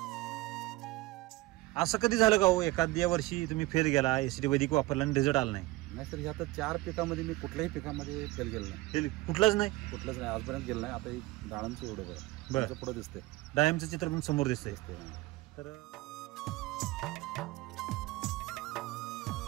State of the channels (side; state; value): left; quieter; 19.7 dB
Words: असं कधी झालं का हो एखाद्या वर्षी तुम्ही फेल गेला, एसीटी वैदिक वापरला आणि रिझल्ट आला नाही? नाही सर, आता 4 पिकामध्ये मी कुठल्याही पिकामध्ये फेल गेलो नाही. फेल कुठलाच नाही? कुठलंच नाही आजपर्यंत गेलं नाही. आता डाळांचं एवढं बरं. बरं पुढे दिसते. डायमचं चित्र पण समोर दिसतंय. तर